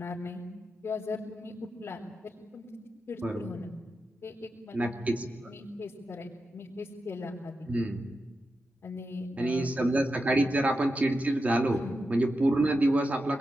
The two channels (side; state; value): both; normal; correlation 0.89